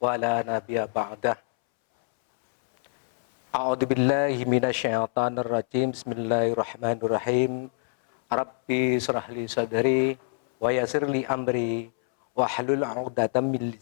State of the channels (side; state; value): right; silent; 61 dB below the other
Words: wa la nabiyya ba'dah. A'udzu billahi minasyaitonir rajim. Bismillahirrahmanirrahim. Rabbi shrah li sadri wa yassir li amri wa hlul 'uqdatam min